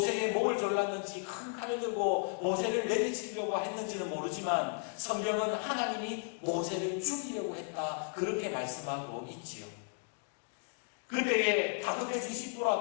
목을 졸랐는지 큰 칼을 들고 모세를 내리치려고 했는지는 모르지만 성경은 하나님이 모세를 죽이려고 했다, 그렇게 말씀하고 있지요. 그때에 다급해진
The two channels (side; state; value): right; silent; 55 dB below the other